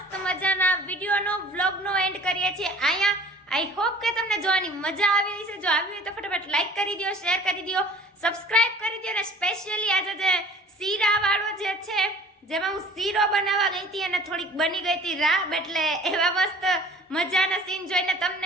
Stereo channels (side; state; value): both; normal; correlation 0.48